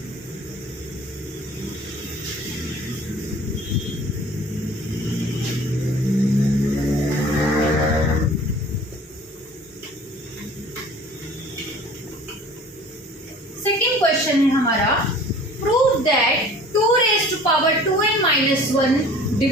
क्वेश्चन है हमारा, prove that 2 raise to power 2n minus 1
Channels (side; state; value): both; normal; correlation 0.47